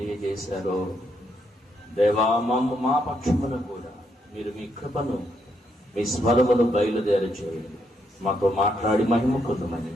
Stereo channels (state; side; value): normal; both; correlation 0.77